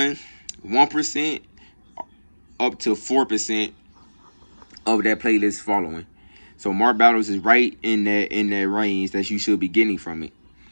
up to 4% of that playlist following. So Mark Battles is right in that range that you should be getting from it.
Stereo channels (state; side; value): inverted; both; correlation -1.00